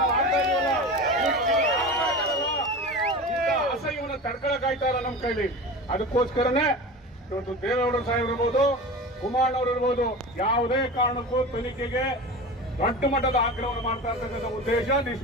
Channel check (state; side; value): normal; both; correlation 0.31